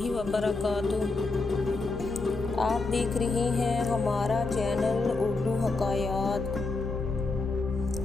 وبرکاتہ۔ آپ دیکھ رہے ہیں ہمارا چینل اردو حکایات۔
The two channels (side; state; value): right; quieter; 3.6 dB